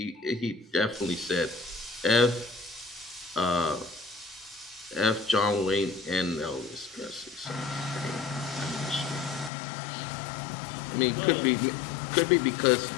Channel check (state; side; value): drops out; right; at 9.5 s